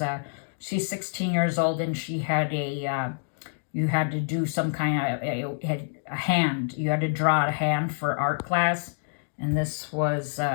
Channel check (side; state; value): right; silent; digital silence